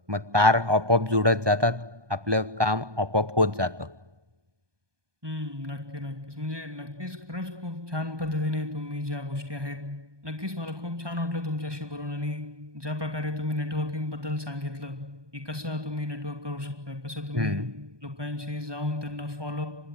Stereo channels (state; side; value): late; left; 1.2 ms